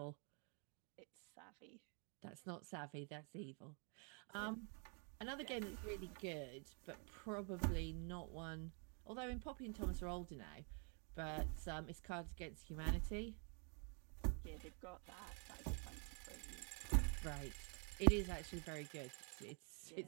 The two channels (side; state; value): left; quieter; 38.9 dB